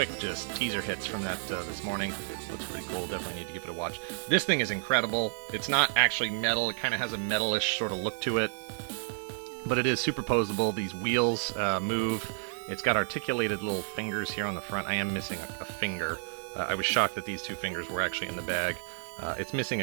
just teaser hits from that this morning. Looks pretty cool. Definitely need to give it a watch. This thing is incredible. It's not actually metal. It kind of has a metalish sort of look to it, but it is superposable. These wheels move. It's got articulated little fingers here on the front. I am missing a finger. I was shocked that these two fingers were actually in the bag. It's missing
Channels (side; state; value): left; silent; digital silence